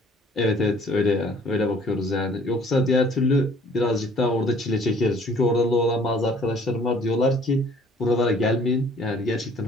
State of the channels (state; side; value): normal; both; correlation 0.56